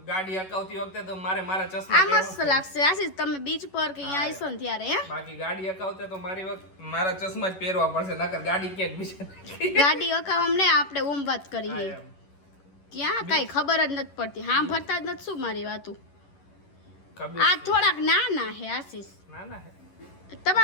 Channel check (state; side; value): late; right; 11 ms